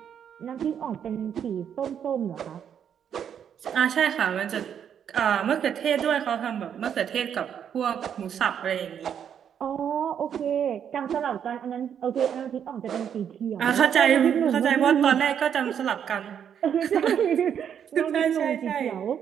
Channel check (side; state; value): left; quieter; 8.5 dB